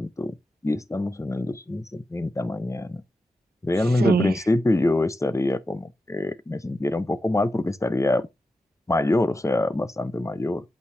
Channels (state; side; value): normal; both; correlation 0.90